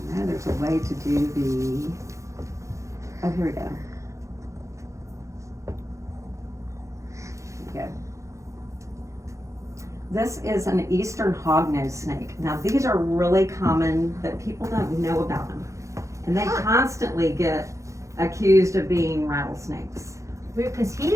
know there's a way to do oh, here we go. Here we go. This is an eastern hognose snake. Now these are really common, but people don't know about them. And they constantly get accused of being rattlesnakes. Because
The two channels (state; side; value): late; left; 0.15 ms